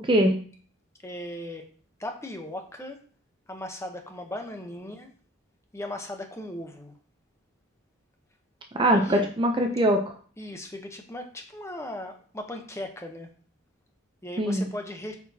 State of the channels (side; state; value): both; normal; correlation 0.49